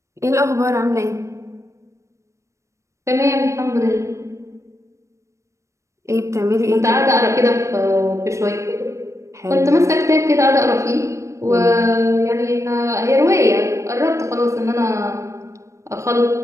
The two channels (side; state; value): left; late; 0.15 ms